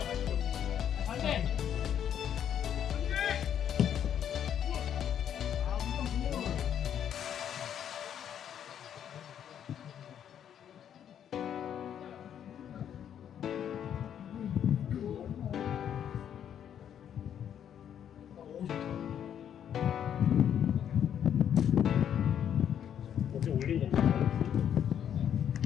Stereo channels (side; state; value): right; quieter; 9.3 dB